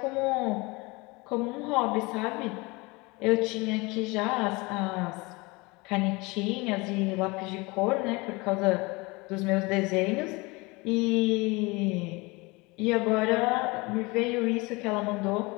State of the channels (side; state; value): right; quieter; 25.0 dB